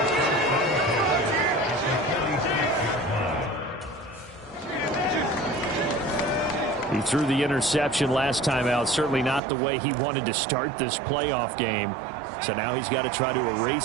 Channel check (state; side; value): drops out; left; at 9.4 s